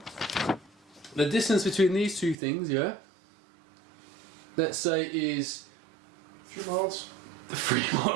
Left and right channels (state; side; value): drops out; left; at 2.4 s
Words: the distance between these 2 things, yeah. Let's say is a few miles. 3